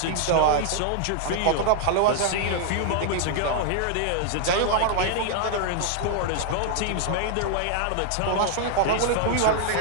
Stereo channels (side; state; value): both; different; correlation 0.00